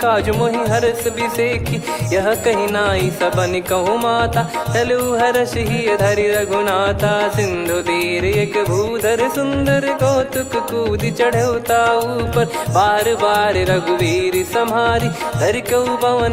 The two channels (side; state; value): both; identical; correlation 1.00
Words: काज मोहि हरस बिसेखी। यह कही नाई सबन कहु माता चलु हरष ही धरि रघुनाथा। सिंधु तीर एक भूधर सुंदर कौतुक कूद चढ़ौता ऊपर। बार बार रघुवीर सम्हारी धरि कऊ